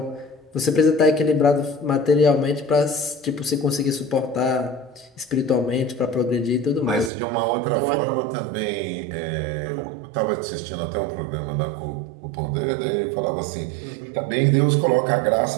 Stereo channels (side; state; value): left; drops out; at 7.1 s